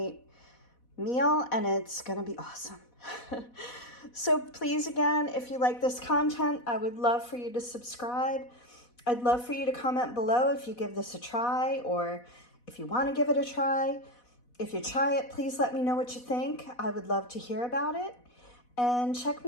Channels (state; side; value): late; right; 4.1 ms